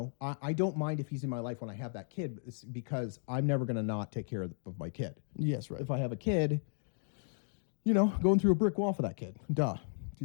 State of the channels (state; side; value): silent; right; digital silence